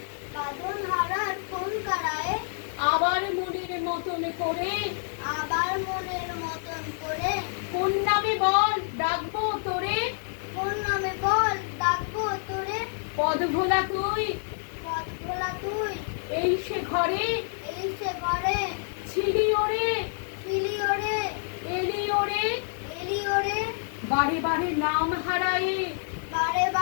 বাঁধন হারার কোন কারায়ে, আবার মনের মতন করে, আবার মনের মতন করে, কোন নামে বল ডাকবো তোরে, কোন নামে বল ডাকবো তোরে, পদ ভোলা তুই, পথ ভোলা তুই, এই সে ঘরে, এই সে ঘরে, ছিলি ওরে, ছিলি ওরে, এলি ওরে, এলি ওরে, বারে বারে নাম হারায়ে, বারে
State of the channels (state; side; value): silent; right; digital silence